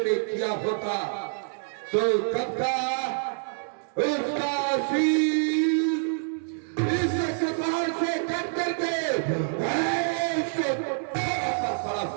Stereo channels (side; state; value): left; silent; digital silence